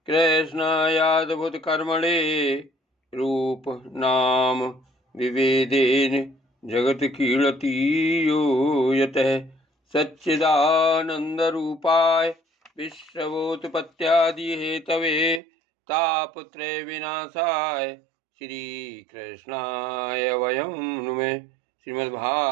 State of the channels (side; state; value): left; drops out; at 15.4 s